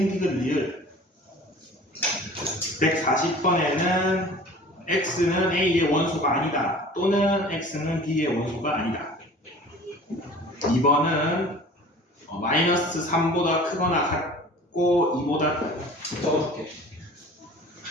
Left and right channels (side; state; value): both; normal; correlation 0.44